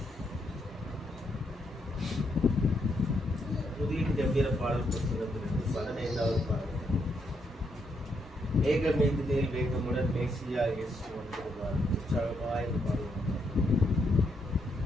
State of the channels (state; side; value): normal; both; correlation 0.78